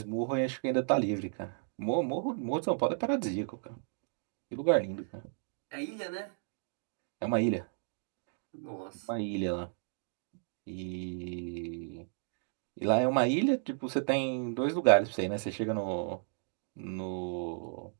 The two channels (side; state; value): left; silent; digital silence